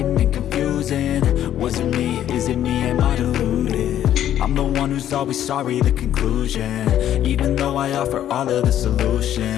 and confusing. Was it me? Is it me? Am I deluded? I'm the one who's always sorry, the conclusion, even though I offer all of the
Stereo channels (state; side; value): quieter; right; 11.2 dB